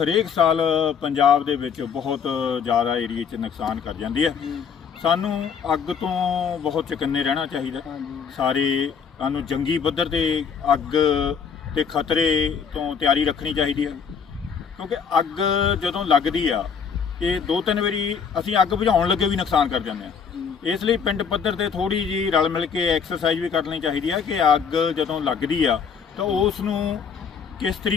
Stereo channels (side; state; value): right; quieter; 6.6 dB